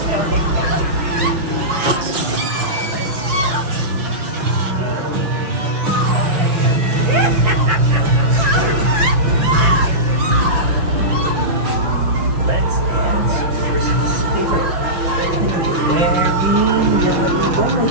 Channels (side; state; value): left; late; 6.0 ms